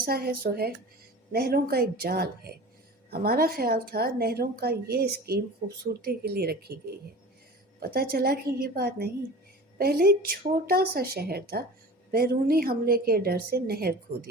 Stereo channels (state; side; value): normal; both; correlation 0.37